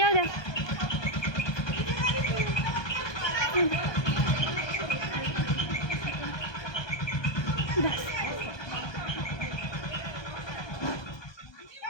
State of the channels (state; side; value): late; right; 1.2 ms